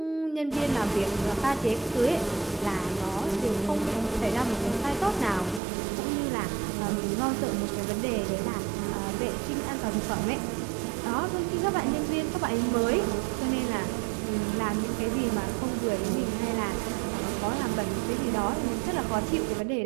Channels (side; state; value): left; drops out; at 5.6 s